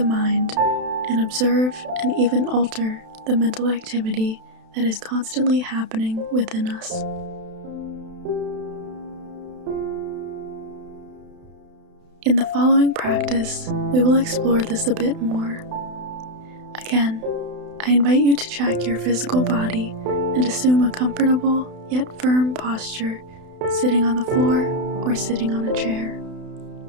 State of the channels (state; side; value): late; left; 32 ms